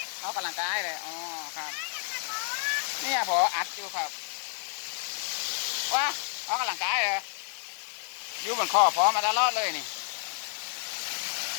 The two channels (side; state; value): right; silent; digital silence